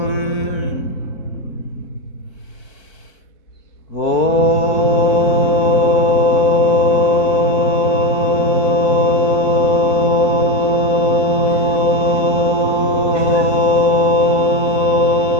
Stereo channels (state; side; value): late; right; 4.5 ms